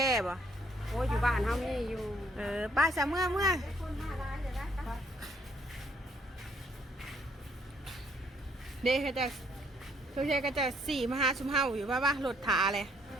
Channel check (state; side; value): normal; both; correlation 0.67